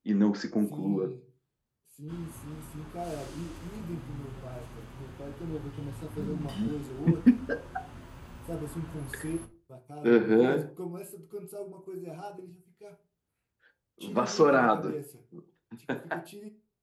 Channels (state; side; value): identical; both; correlation 1.00